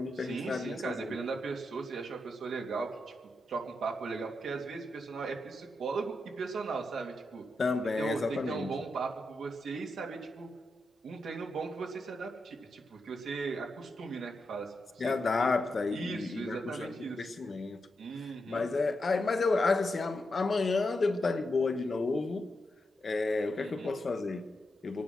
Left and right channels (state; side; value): normal; both; correlation 0.86